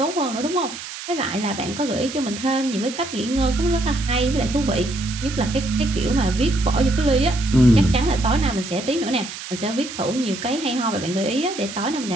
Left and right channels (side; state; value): right; noise; hiss, 10 dB below the sound